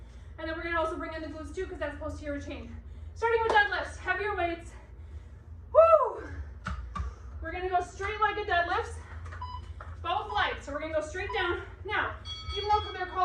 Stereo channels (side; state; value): both; identical; correlation 1.00